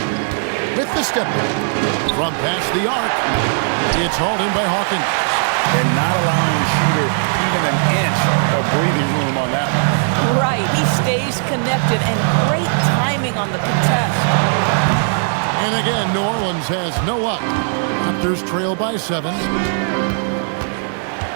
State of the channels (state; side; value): silent; left; digital silence